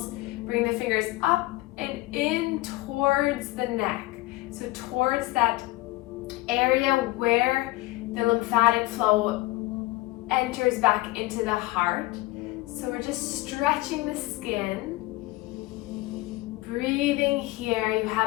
Bring the fingers up and in towards the neck. So towards that area where the lymphatic flow enters back into the heart. So we're just stretching the skin. Breathing here, you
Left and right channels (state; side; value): quieter; right; 19.6 dB